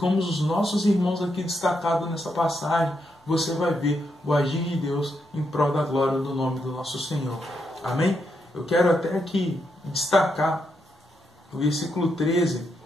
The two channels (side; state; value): both; normal; correlation 0.81